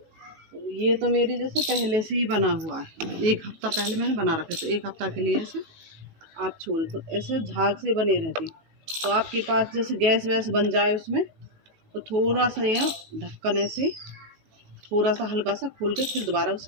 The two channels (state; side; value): late; left; 19 ms